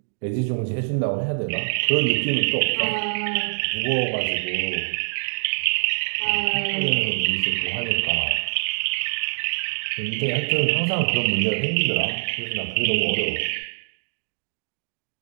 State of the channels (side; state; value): left; silent; digital silence